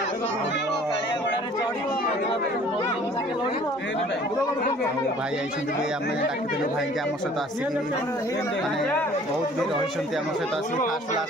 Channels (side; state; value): both; normal; correlation 0.52